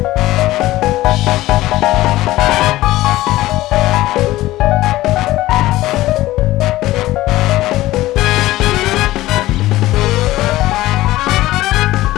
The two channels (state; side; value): quieter; right; 16.7 dB